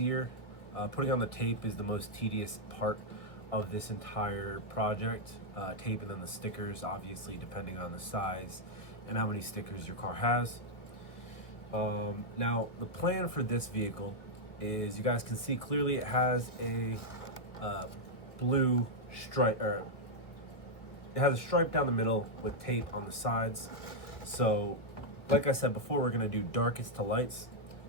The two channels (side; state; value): right; late; 1.8 ms